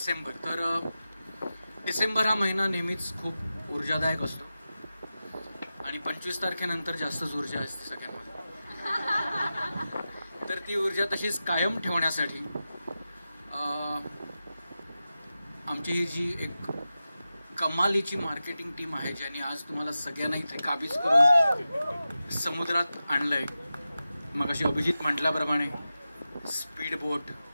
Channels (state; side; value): inverted; both; correlation -0.93